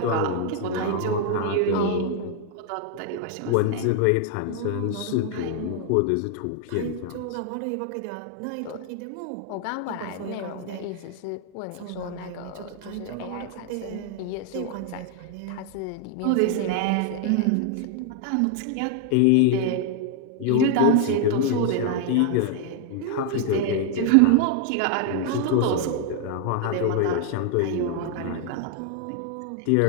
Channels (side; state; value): both; different; correlation 0.00